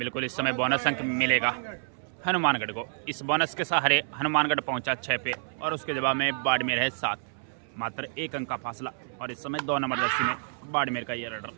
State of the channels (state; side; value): silent; left; 59 dB below the other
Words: इस समय बोनस अंक मिलेगा हनुमानगढ़ को। इस बोनस के सहारे हनुमानगढ़ पहुंचा 6 पे और उसके जवाब में बाड़मेर है 7। मात्र 1 अंक का फासला। और इस समय 2 नंबर जर्सी में बाड़मेर का ये रेडर।